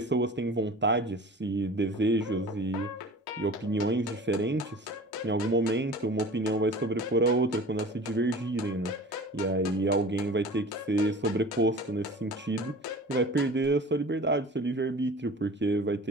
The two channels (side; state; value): both; normal; correlation 0.40